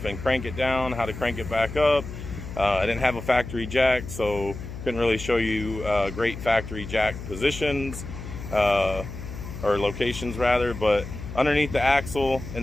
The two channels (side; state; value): left; noise; hum, 10 dB below the sound